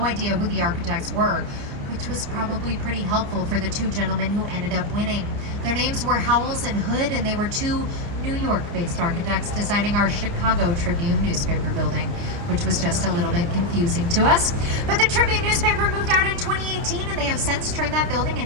idea who the architects were, which was probably pretty helpful for the two gentlemen who ended up winning. Their names were Howells and Hood, and they were two New York-based architects designing our Chicago Tribune newspaper building, which was just a little bit confusing to us. But the Tribune newspaper moved out in 2018, and they have since turned that building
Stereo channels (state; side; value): late; left; 29 ms